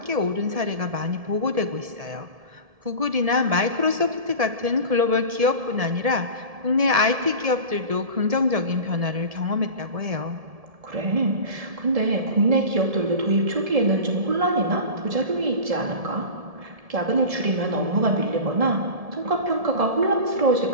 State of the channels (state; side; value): late; left; 1.7 ms